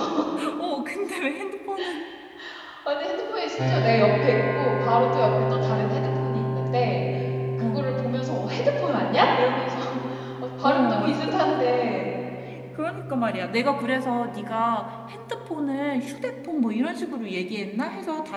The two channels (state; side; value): identical; both; correlation 1.00